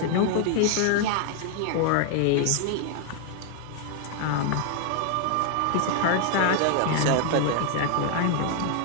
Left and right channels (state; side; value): different; both; correlation 0.00